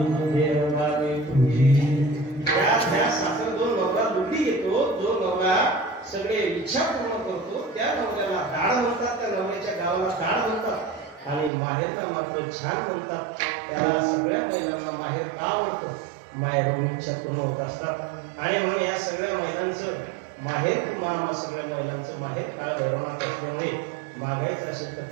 त्या सासर जो नवरा लुटी घेतो, जो नवरा सगळे इच्छा पूर्ण करतो, त्या नवऱ्याला दाड म्हणतात. त्या नवऱ्याच्या गावाला दाड म्हणतात. आणि माहेरला छान म्हणतात त्याला सगळ्या महिलांना माहेर का आवडतं, माहेरून इच्छा पूर्ण होत असतात. आणि म्हणून या सगळ्या महिलांचं माहेर मामा सगळ्या महिलांचं माहेर काळ भैरवनाथ असल्यामुळे मागायचं असेल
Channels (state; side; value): drops out; left; at 11.5 s